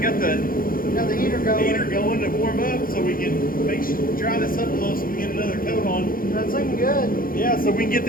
the heater going to warm up so we can dry this up a little so we get another coat on. That's looking good. Yeah, so we can get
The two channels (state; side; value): late; right; 0.41 ms